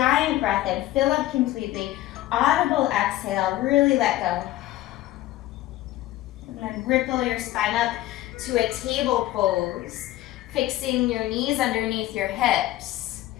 breath in, fill up completely. Audible exhale, really let go. And then ripple your spine up to a table pose, fixing your knees underneath your hips.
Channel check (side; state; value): right; quieter; 15.5 dB